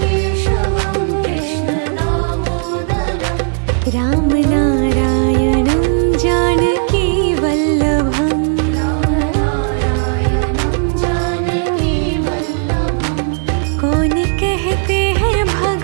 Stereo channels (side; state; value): left; silent; 70 dB below the other